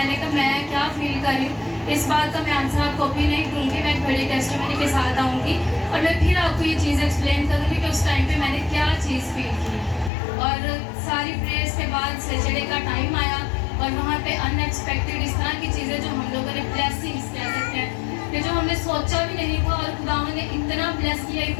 कहा मैं क्या फील कर रही हूँ, इस बात का मैं आंसर आपको भी नहीं दूँगी, मैं एक बड़ी टेस्टिमनी के साथ आऊँगी और मैं फिर आपको ये चीज़ एक्सप्लेन करूँगी कि उस टाइम पे मैंने क्या चीज़ फील की। और सारी प्रेयर्स के बाद सैटरडे का टाइम आया और वहाँ पे अनएक्सपेक्टेड इस तरह की चीज़ें जो हम लोगों ने ब्लेसिंग्स कह सकते हैं कि जो हमने सोचा भी नहीं था, और खुदावंद ने इतना ब्लेस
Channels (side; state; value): right; drops out; at 10.1 s